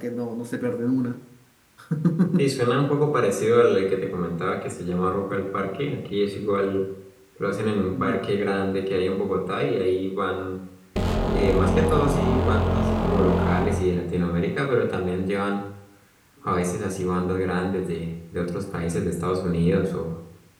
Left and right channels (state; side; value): identical; both; correlation 1.00